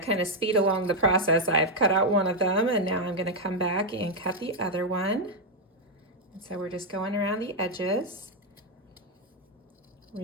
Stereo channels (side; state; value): both; normal; correlation 0.01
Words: of speed along the process, I've cut out one of them, and now I'm gonna come back and cut the other one. And so we're just going around the edges,